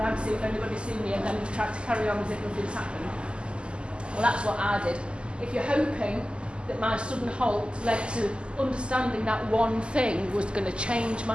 to see if anybody's seen you, and then you try to carry on as if nothing's happened. Well, that's what I did. If you're hoping that my sudden halt led to understanding that one thing was going to change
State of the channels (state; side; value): late; left; 0.051 ms